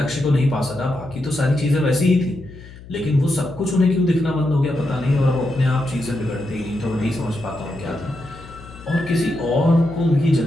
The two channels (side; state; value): left; noise; hum, 18 dB below the sound